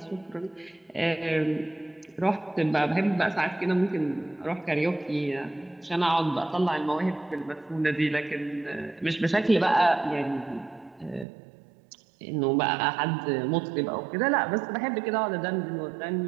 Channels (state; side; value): drops out; left; at 11.2 s